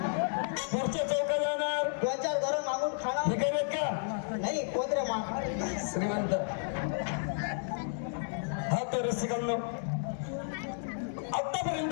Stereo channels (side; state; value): right; silent; digital silence